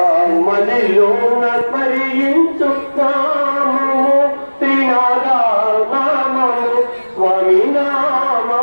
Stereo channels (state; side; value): inverted; both; correlation -1.00